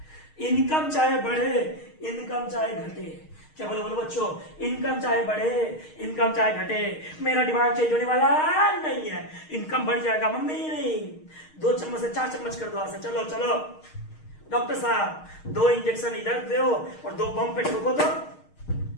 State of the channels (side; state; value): right; late; 6.4 ms